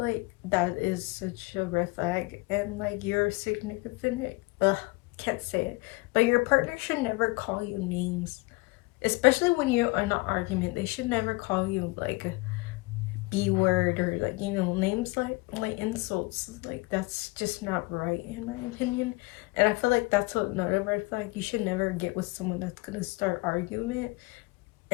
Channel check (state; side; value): quieter; right; 24.5 dB